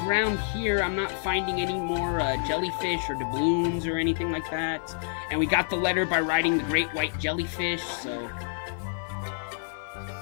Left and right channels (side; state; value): right; silent; digital silence